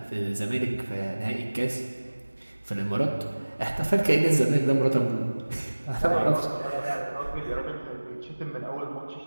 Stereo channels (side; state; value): both; inverted; correlation -1.00